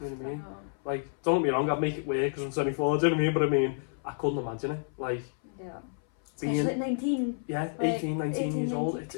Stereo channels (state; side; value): silent; right; 58 dB below the other